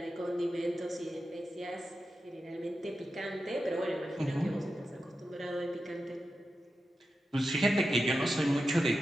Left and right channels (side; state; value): both; normal; correlation 0.90